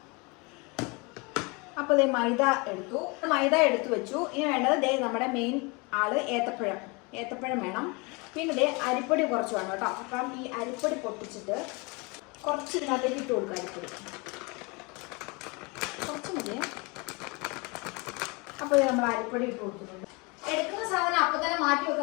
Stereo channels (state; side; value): quieter; right; 28.4 dB